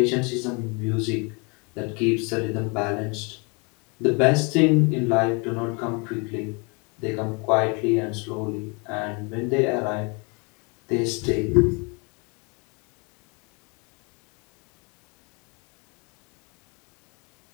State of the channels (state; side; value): quieter; right; 31.9 dB